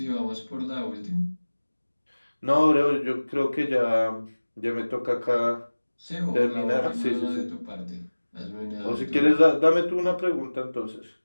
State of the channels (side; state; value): both; inverted; correlation -1.00